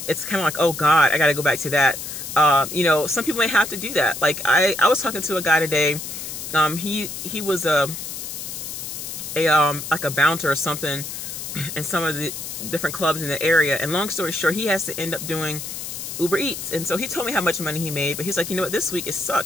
It's kind of like, oh God, I got to go back to that. Some people may have to do that. Like I was talking to a guy today. He was like a bouncer or something in some of the different clubs in the area. And long story short, he has to end up doing Uber Eats. And so he told me how much money he made, but he's like, you know what, this week it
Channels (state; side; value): noise; left; hiss, 7 dB below the sound